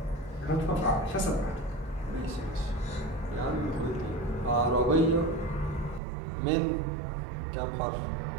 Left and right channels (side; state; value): left; drops out; at 6.0 s